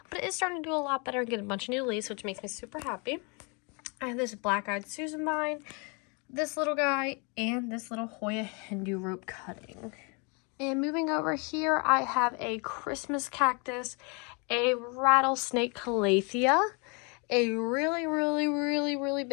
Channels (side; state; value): right; quieter; 32.8 dB